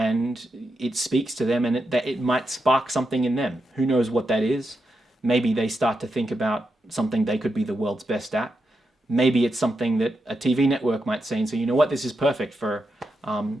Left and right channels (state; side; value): normal; both; correlation 0.86